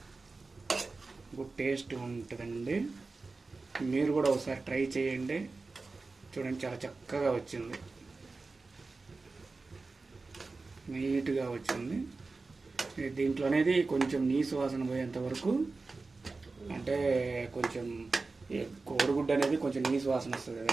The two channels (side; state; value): left; quieter; 3.8 dB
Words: గుడ్ టేస్ట్ ఉంటుందండి. మీరు కూడా ఒకసారి ట్రై చేయండి. చూడండి చాలా చక్కగా వచ్చింది, నీట్గా వచ్చింది. దీంట్లో అనేది కొంచెం నీసు వాసన పోయేంత వరకు, అంటే కొంచెం కోడిగుడ్డు అనేది కొంచెం నీసు వాసన వస్తుంది